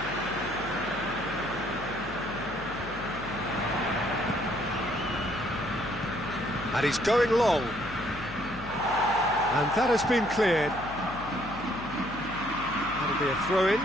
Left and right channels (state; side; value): noise; left; hum, 14 dB below the sound